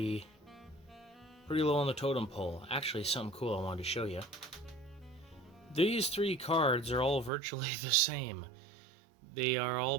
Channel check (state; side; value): drops out; left; at 7.3 s